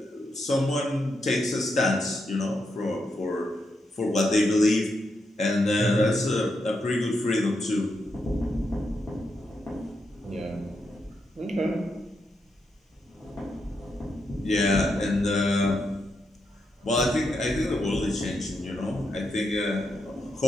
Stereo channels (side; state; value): both; normal; correlation 0.82